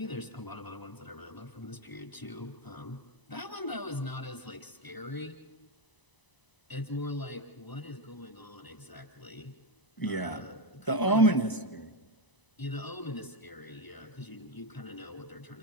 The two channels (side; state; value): right; late; 1.0 ms